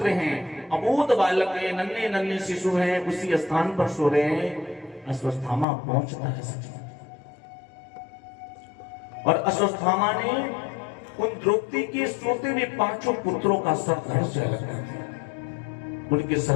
हैं, अबोध बालक है, नन्हे नन्हे शिशु हैं, उसी स्थान पर सो रहे हैं। अश्वत्थामा पहुंचता है सच, और अश्वत्थामा ने उन द्रौपदी के सोते हुए 5 पुत्रों का सर धड़ से अलग कर दिया। उनके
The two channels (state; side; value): drops out; right; at 5.7 s